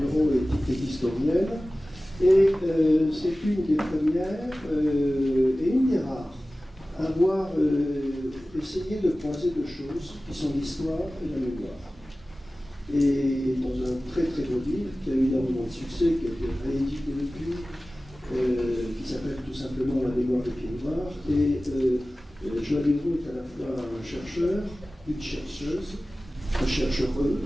Hureau est historienne, et c'est une des premières et une des rares à avoir essayé de croiser deux choses qui sont l'histoire et la mémoire. Et dans un très très beau livre qui a eu énormément de succès, qui a été réédité depuis, qui s'appelle tout simplement La mémoire des pieds noirs. Et Joël Hureau est à la fois un chercheur, une chercheuse, un chercheureux,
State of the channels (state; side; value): normal; both; correlation 0.97